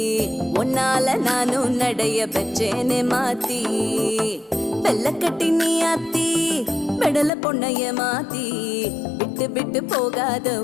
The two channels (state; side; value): drops out; right; at 7.3 s